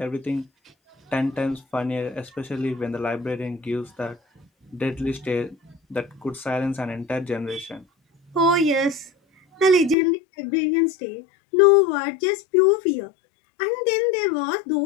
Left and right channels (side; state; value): right; drops out; at 10.0 s